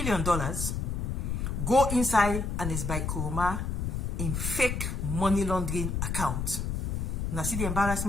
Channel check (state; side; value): noise; left; rumble, 2 dB below the sound